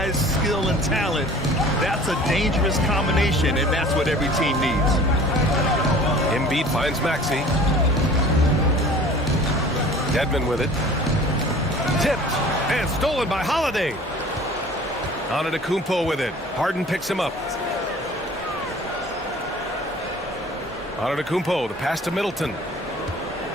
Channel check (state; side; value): normal; both; correlation 0.46